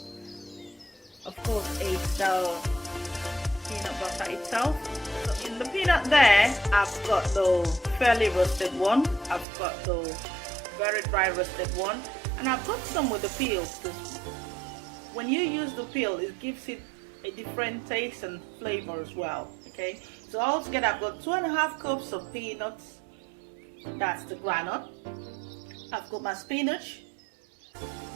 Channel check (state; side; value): drops out; left; at 9.5 s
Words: of course, is the peanut butter itself. So in the peanut there, I've got the fairly roasted one, I've got the very dry roasted one, and I've got some with the peel. When you use the peel, it gives it a different taste and flavor as well. Okay, so altogether I've got 2.5 cups of peanuts, that's the groundnut. I've got my spinach,